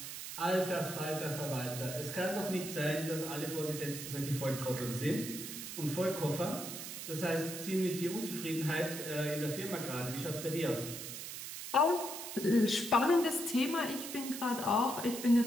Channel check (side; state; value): right; noise; hiss, 8 dB below the sound